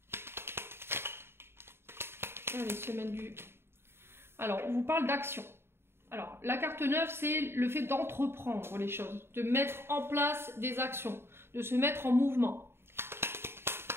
Allez, semaine du... Alors, on vous parle d'action. Alors, la carte 9, c'est le fait d'entreprendre les choses, de mettre en place des actions, de se mettre en mouvement.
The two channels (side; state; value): left; late; 0.11 ms